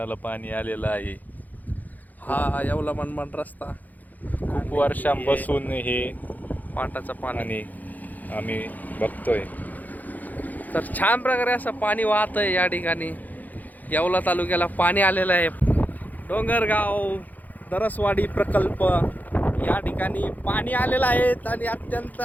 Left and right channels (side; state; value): right; late; 0.082 ms